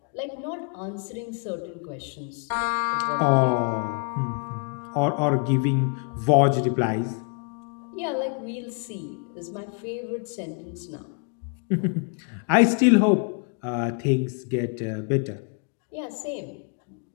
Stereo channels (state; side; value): quieter; right; 38.5 dB